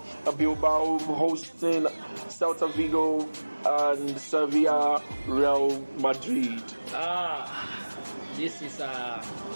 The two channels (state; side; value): inverted; both; correlation -1.00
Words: Bilbao hosting Celta Vigo, and Sevilla, Real Madrid. This is